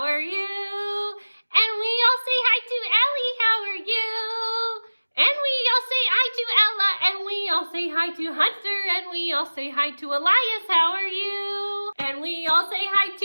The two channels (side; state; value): both; inverted; correlation -1.00